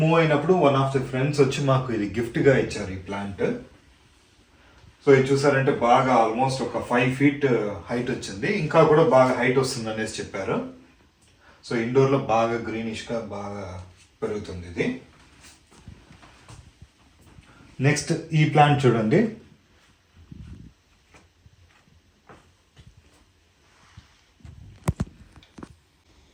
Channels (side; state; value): both; identical; correlation 1.00